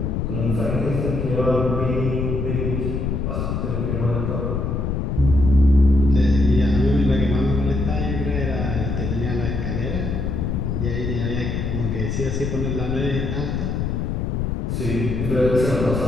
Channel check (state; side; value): noise; left; rumble, 1 dB below the sound